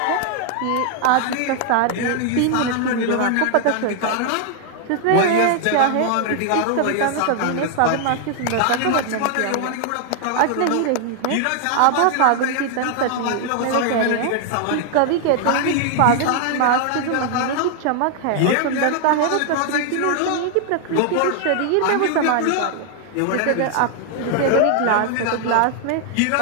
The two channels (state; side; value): different; both; correlation 0.00